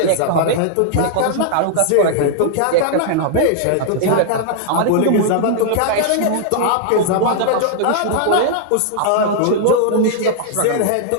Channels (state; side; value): different; both; correlation -0.01